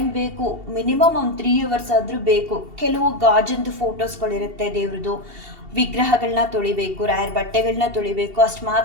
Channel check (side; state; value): left; late; 2.7 ms